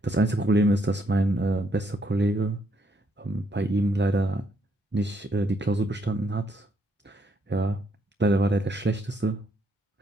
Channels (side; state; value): both; normal; correlation 0.73